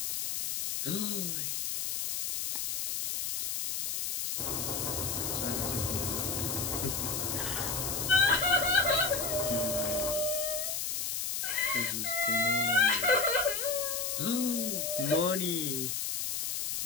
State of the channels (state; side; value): noise; left; hiss, 1 dB below the sound